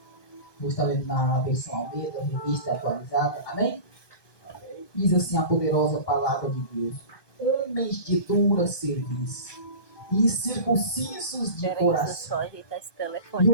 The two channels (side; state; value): right; late; 1.2 ms